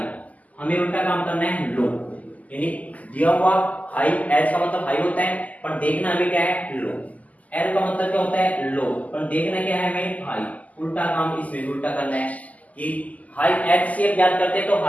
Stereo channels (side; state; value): right; late; 0.075 ms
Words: हमें उल्टा काम करना है लो, यानी दिया हुआ हाई, H का मतलब हाई होता है पर देखना हमें क्या है लो, L का मतलब क्या होता है लो पर देखना क्या है हमें हाई, उल्टा काम इसमें उल्टा करना है कि हाई HCF याद करते हैं तो